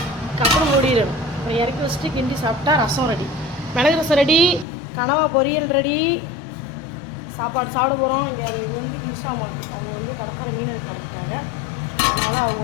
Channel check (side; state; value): right; drops out; at 4.7 s